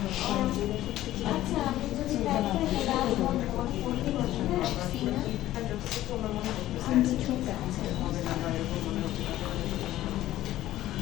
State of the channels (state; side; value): quieter; right; 14.4 dB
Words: আচ্ছা আমি যদি